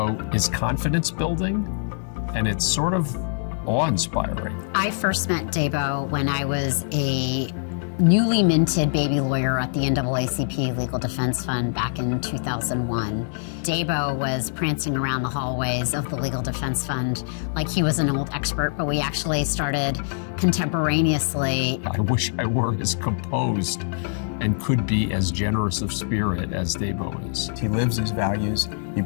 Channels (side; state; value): right; silent; 60 dB below the other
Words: is confidence building, and it's sort of awe-inspiring. I first met Debo when I was a newly minted baby lawyer at the NAACP Legal Defense Fund back in 2001. Debo was prancing around the hallways of the Legal Defense Fund like he was an old expert, but we actually started contemporaneously. I wish I were as composed and could be as generous of spirit as Debo is. He lives his values. He